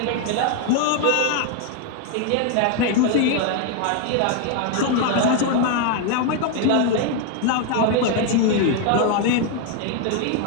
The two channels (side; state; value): both; different; correlation 0.01